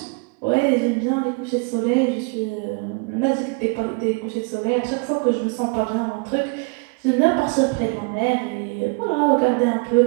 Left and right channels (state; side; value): quieter; left; 33.1 dB